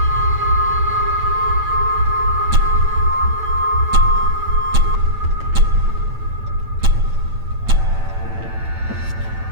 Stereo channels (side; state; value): left; late; 8.9 ms